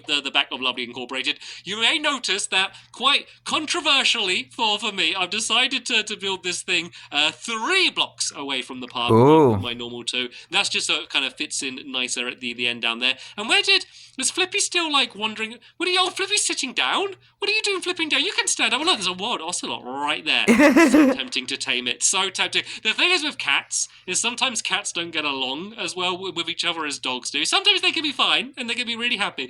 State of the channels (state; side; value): identical; both; correlation 1.00